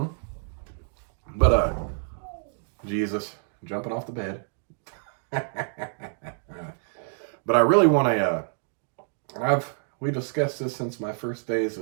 But, Jesus, jumping off the bed. But I really want and we discussed this since my first days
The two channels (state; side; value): silent; left; digital silence